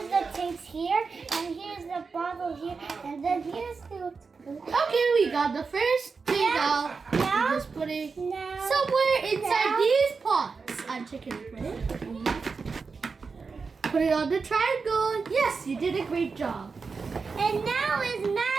the tapes here, and here's the bottle here, and then here's the Okay, we got the first thing out. Now- We just put it now somewhere inside now- these pots. I'm checking it. Ready? Put it on the triangle. Yes, you did a great job. and now it's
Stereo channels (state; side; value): quieter; left; 4.8 dB